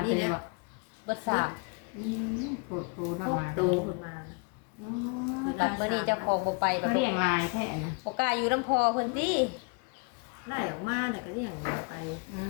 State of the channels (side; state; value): right; quieter; 33.2 dB